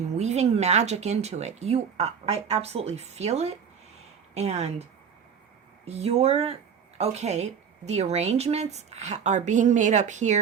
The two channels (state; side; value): quieter; left; 7.2 dB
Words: weaving magic into it. I absolutely feel it. And the arrangements are being made up